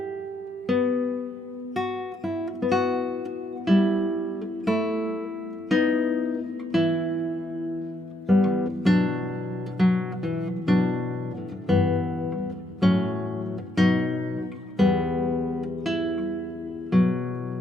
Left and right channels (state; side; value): normal; both; correlation 0.76